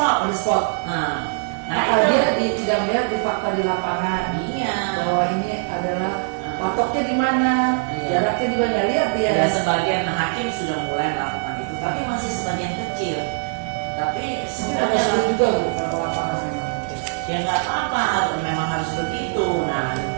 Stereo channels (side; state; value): left; silent; digital silence